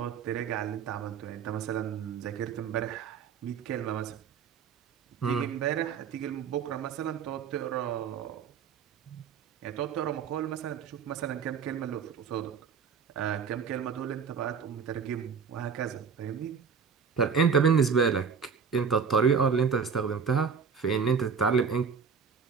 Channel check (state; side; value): quieter; left; 6.2 dB